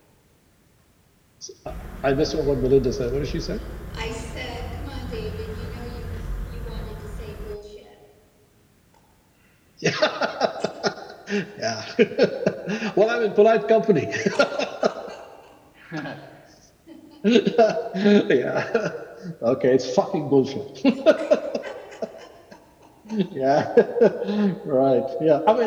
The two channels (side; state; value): both; identical; correlation 1.00